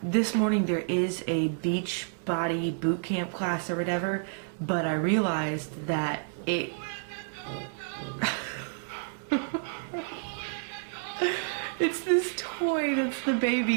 This morning there is a beach body boot camp class or whatever, but I realized that it it's this toy that's the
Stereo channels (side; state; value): left; silent; digital silence